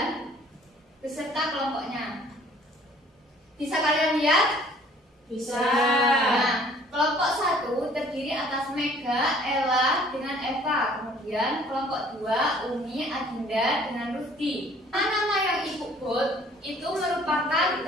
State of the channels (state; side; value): normal; both; correlation 0.55